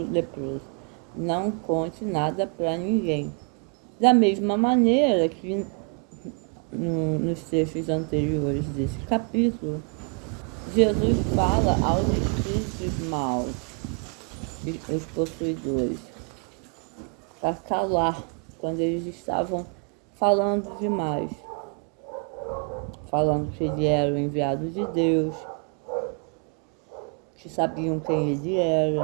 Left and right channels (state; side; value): quieter; left; 39.3 dB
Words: leproso, não conte nada para ninguém. Da mesma maneira que nos trechos anteriores desse capítulo, Jesus fala aos espíritos maus, os possuidores, para calar quando eles estavam falando demais, falando que ele era o enviado de Deus, que sabiam quem ele